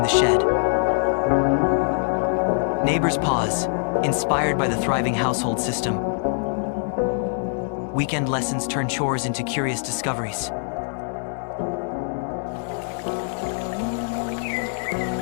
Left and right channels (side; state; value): right; silent; digital silence